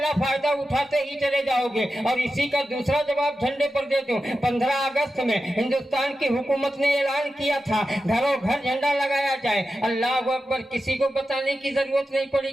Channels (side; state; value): both; normal; correlation 0.91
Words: فائدہ اٹھاتے ہی چلے جاؤ گے۔ اور اسی کا دوسرا جواب جھنڈے پر دے دوں۔ 15 اگست میں ہندوستان کی حکومت نے اعلان کیا تھا گھروں گھر جھنڈا لگایا جائے۔ اللہ اکبر، کسی کو بتانے کی ضرورت نہیں پڑی